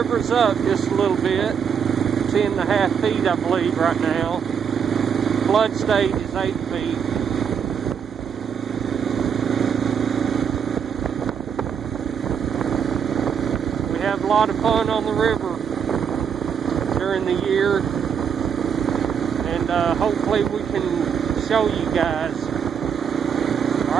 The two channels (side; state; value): left; quieter; 7.4 dB